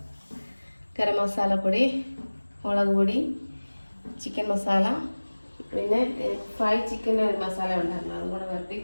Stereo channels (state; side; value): inverted; both; correlation -1.00